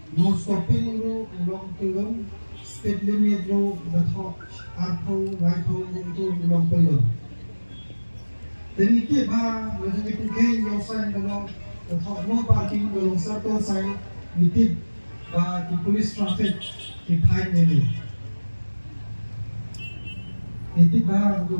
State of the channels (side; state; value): both; inverted; correlation -1.00